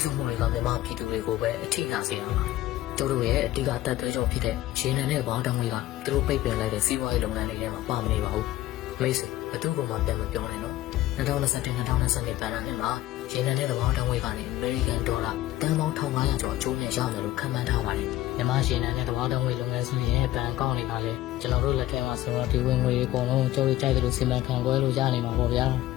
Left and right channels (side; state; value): right; quieter; 15.1 dB